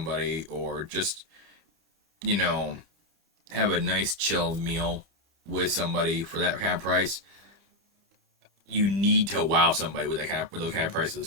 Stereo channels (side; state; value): left; late; 30 ms